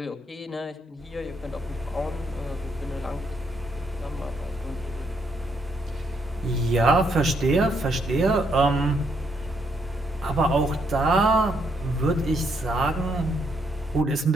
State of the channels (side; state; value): both; normal; correlation 0.75